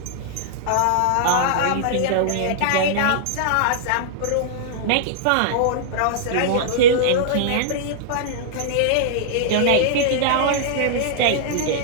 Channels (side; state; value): both; different; correlation -0.02